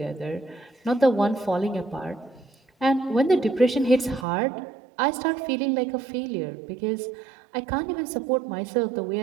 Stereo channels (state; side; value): drops out; left; at 4.2 s